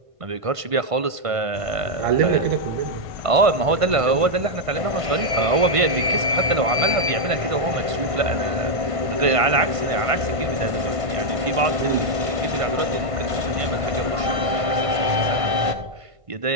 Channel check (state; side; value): late; left; 1.5 ms